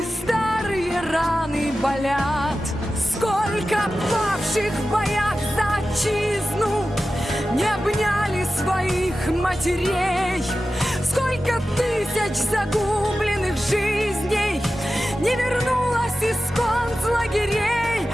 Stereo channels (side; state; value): both; normal; correlation 0.94